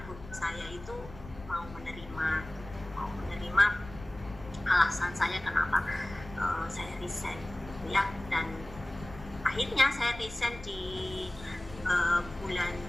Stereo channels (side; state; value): left; noise; rumble, 15 dB below the sound